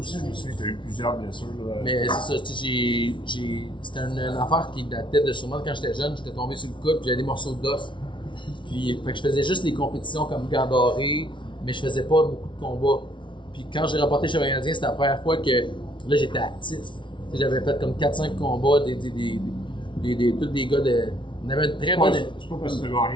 je me souviens, tu as eu plusieurs blessures. Là. Mais c'est ça, c'était une affaire qui datait de sûrement quand j'étais jeune, j'étais tombé sur le coude, puis j'avais des morceaux d'os. Puis, fait que je faisais juste les compétitions comme Gandoré, mais je faisais pas beaucoup de combats. Puis quand j'ai remporté le championnat canadien, c'était la première fois que là j'étais actif. J'avais fait comme 4-5 combats, tous des gars de. On avait une très bonne. C'est pas parce que tu as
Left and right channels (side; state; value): right; late; 0.24 ms